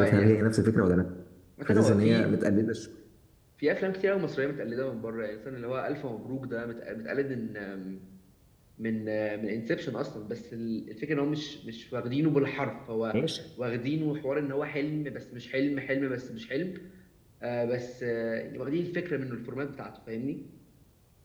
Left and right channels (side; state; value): both; identical; correlation 1.00